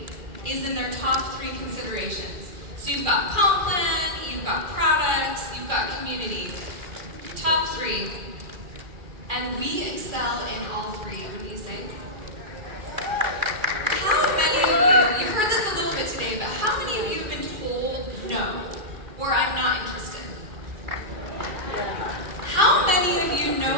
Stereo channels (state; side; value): late; left; 2.4 ms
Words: is in their top 3 considerations? So you've got comp plan, you've got products, you've got community. Top 3. And we excel in all 3, wouldn't you say? How many of you, you've heard this a little bit today, but how many of you have been told no, or I'm not interested? How many of you